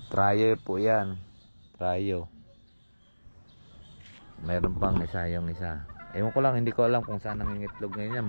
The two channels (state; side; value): inverted; both; correlation -1.00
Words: Trayo po yan. Trayo. Mayroon pang isa yung isa. Ewan ko lang, hindi ko alam kung saan nangingitlog ngayon